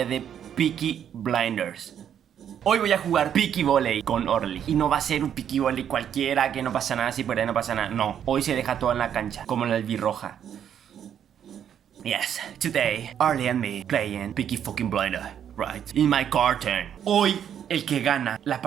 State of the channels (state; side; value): quieter; left; 9.1 dB